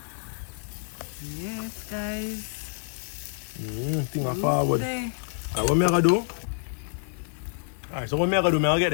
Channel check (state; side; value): silent; right; digital silence